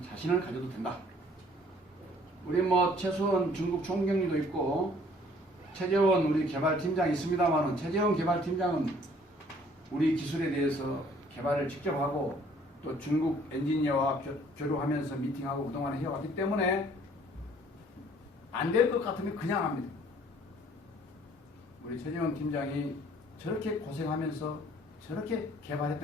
자신을 가져도 된다. 우리 최수원 중국 총경리도 있고 최재원 우리 개발팀장이 있습니다만은, 최재원 개발팀장은 우리 기술에 대해서 개발을 직접 하고 또 중국 엔지니어와 교류하면서 미팅하고 그동안 해왔기 때문에 안 될 것 같으면 그냥 합니다. 우리 최재원 팀장이 저렇게 고생하면서 저렇게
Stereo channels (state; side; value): normal; both; correlation 0.58